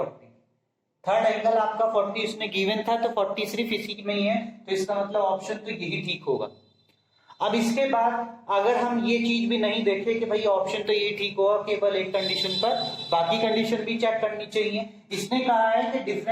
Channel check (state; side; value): identical; both; correlation 1.00